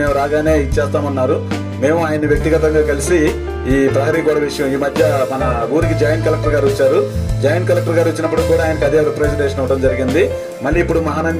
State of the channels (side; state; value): both; identical; correlation 1.00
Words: రాగానే ఇచ్చేస్తామన్నారు. మేము ఆయన వ్యక్తిగతంగా కలిసి ఈ ప్రహరీ గోడ విషయం, ఈ మధ్య మన ఊరికి జాయింట్ కలెక్టర్ గారు వచ్చారు. జాయింట్ కలెక్టర్ గారు వచ్చినప్పుడు కూడా ఆయనకు అదే రిప్రజెంటేషన్ ఇవ్వడం జరిగింది. మళ్ళీ ఇప్పుడు